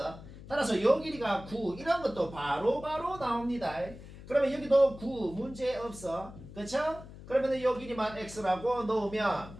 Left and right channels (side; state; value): left; noise; hum, 16 dB below the sound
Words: 따라서 요 길이가 9 이런 것도 바로바로 나옵니다. 그러면 여기도 9 문제 없어. 그쵸? 그러면 요 길이만 x라고 놓으면